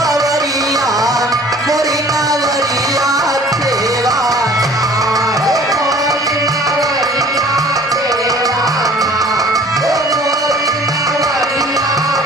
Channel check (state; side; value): normal; both; correlation 0.50